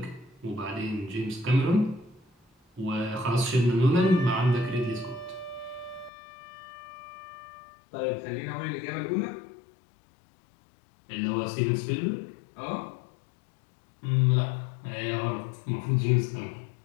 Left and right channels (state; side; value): drops out; right; at 6.1 s